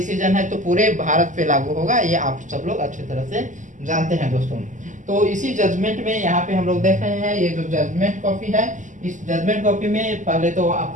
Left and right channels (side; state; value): left; late; 0.37 ms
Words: है तो पूरे भारत पे लागू होगा, ये आप सब लोग अच्छी तरह से जानते हैं। दोस्तों, तो इसी जजमेंट में यहाँ पे हम लोग देख रहे हैं, ये जो जजमेंट कॉपी है, इस जजमेंट कॉपी में पहले तो